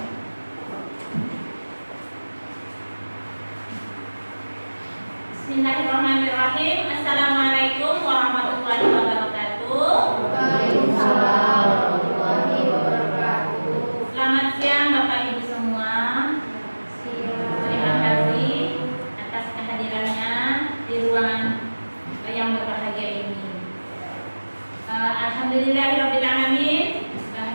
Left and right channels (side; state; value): both; inverted; correlation -1.00